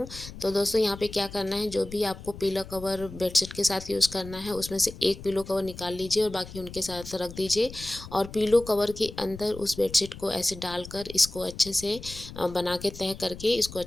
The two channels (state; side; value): noise; left; rumble, 14 dB below the sound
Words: तो दोस्तों यहाँ पे क्या करना है, जो भी आपको पिलो कवर बेडशीट के साथ यूज़ करना है उसमें से एक पिलो कवर निकाल लीजिए और बाकी उनके साथ रख दीजिए, और पिलो कवर के अंदर उस बेडशीट को ऐसे डालकर इसको अच्छे से बना के तह करके इसको